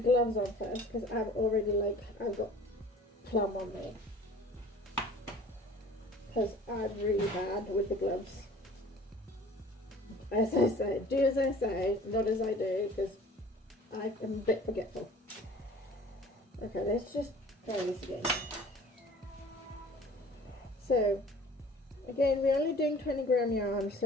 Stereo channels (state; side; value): normal; both; correlation 0.48